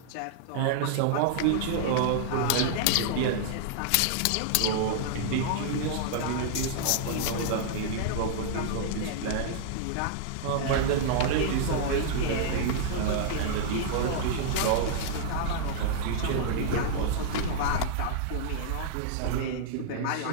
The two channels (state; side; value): different; both; correlation -0.01